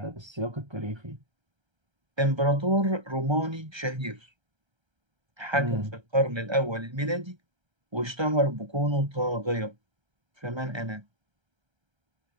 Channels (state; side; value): late; left; 1.3 ms